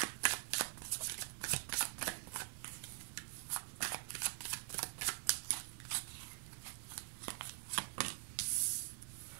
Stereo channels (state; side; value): silent; left; digital silence